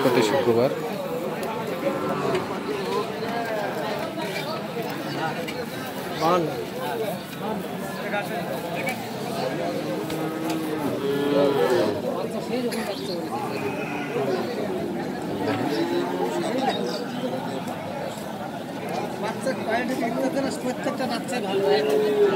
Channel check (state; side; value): identical; both; correlation 1.00